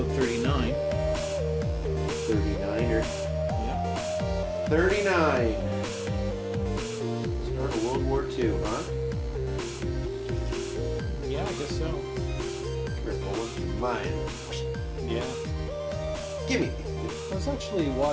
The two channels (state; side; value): identical; both; correlation 1.00